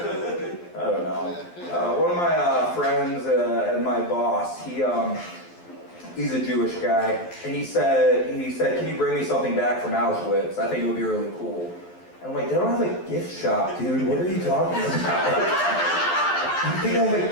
I don't know. One of my friends and my boss, he's a Jewish guy, and he said, can you bring me something back from Auschwitz? I think it would be really cool. And I'm like, they don't have a gift shop, dude. What are you talking about? You think I have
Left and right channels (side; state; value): right; late; 12 ms